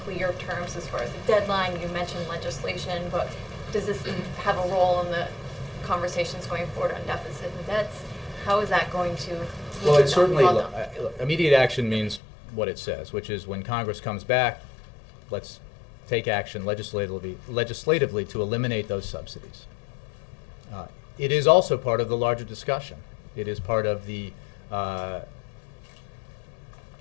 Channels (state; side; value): drops out; right; at 12.2 s